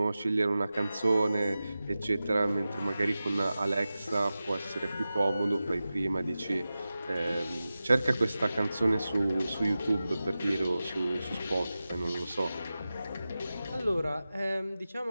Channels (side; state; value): both; inverted; correlation -0.94